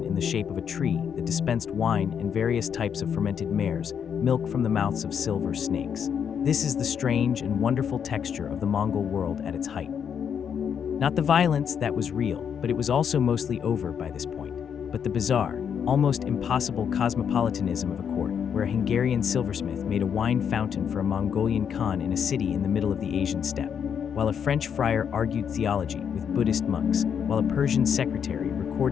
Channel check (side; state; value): right; quieter; 7.7 dB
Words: in the shape of a tree that dispensed wine and various types of fermented mares, milk from the mouths of silver snakes. This is the strange and wonderful texture of the Mongol world at its height. Not the violence that was real, but it was also mostly over by this point, but the bizarre, almost impossible cosmopolitanism of a court where a Hungarian silversmith made a wine fountain for a Mongolian Khan in a city in the middle of the Asian steppe, while a French friar argued theology with Buddhist monks, while a Persian secretary